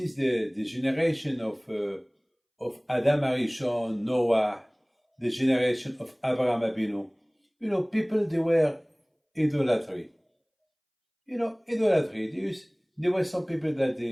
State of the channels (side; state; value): both; identical; correlation 1.00